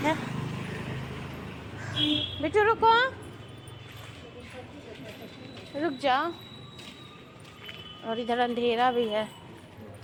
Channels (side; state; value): both; identical; correlation 1.00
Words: बेटू रुको, रुक जाओ। और इधर अंधेरा भी